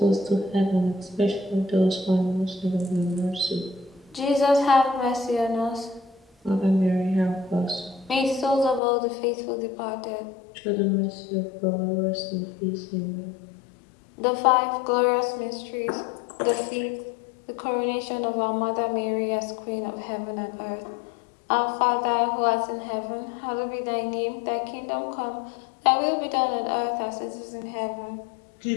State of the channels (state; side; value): drops out; right; at 8.8 s